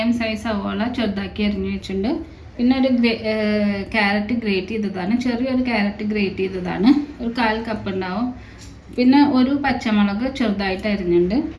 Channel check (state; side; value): identical; both; correlation 1.00